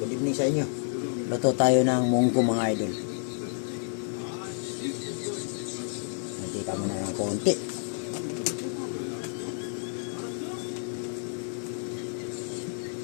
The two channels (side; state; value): right; silent; 58 dB below the other